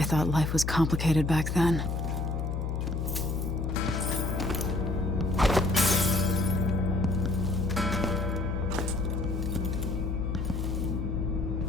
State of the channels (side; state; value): left; noise; hum, 1 dB below the sound